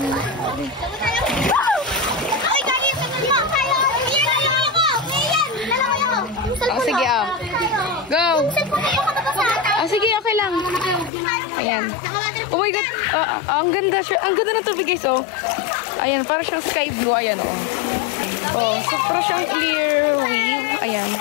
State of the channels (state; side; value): drops out; right; at 11.1 s